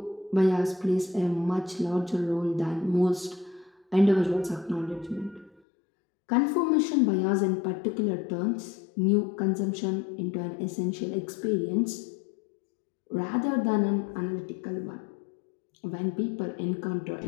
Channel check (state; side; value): drops out; right; at 5.6 s